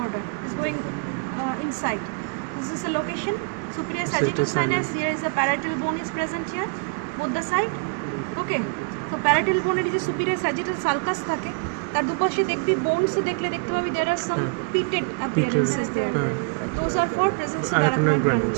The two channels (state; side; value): quieter; left; 35.8 dB